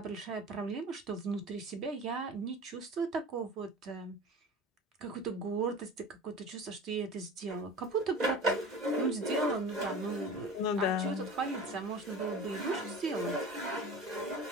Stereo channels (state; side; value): normal; both; correlation 0.36